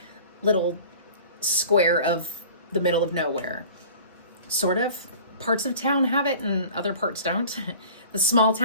little square of the middle of nowhere. Sort of. Parts of town have it and other parts don't. The small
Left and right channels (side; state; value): both; inverted; correlation -0.44